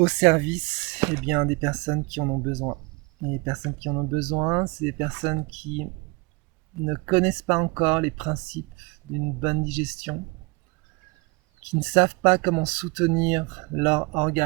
service des personnes qui en ont besoin. Et les personnes qui en ont besoin, c'est des personnes qui ne connaissent pas encore les principes d'une bonne digestion, qui ne savent pas comment soutenir leur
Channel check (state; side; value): quieter; left; 27.5 dB